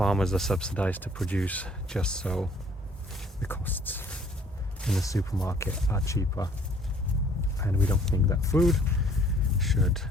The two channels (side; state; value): both; normal; correlation 0.58